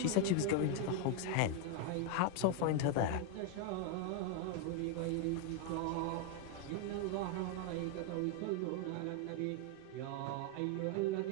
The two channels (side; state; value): both; different; correlation 0.01